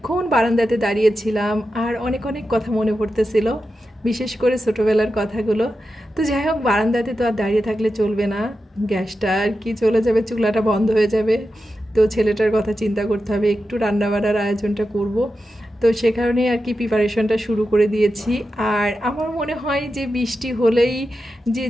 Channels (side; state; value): both; normal; correlation 0.90